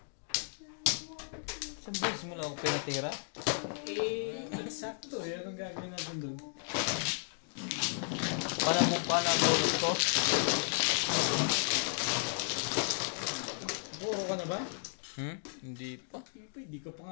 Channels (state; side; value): silent; right; digital silence